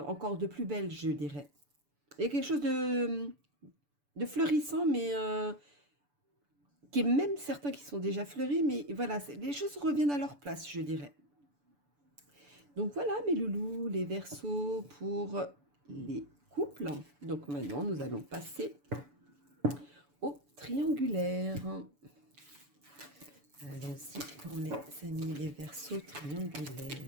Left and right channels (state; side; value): late; left; 6.9 ms